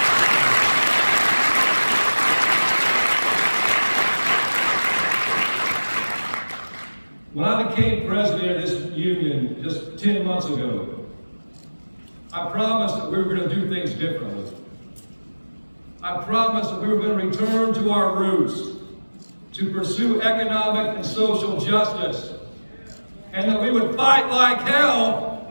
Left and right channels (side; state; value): both; inverted; correlation -1.00